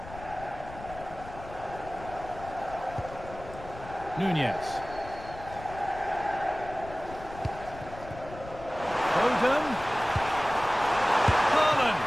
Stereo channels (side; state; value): left; noise; rumble, 14 dB below the sound